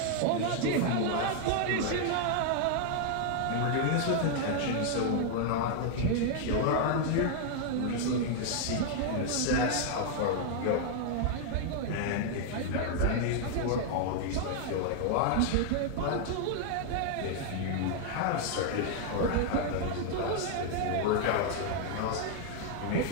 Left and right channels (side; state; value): both; different; correlation 0.00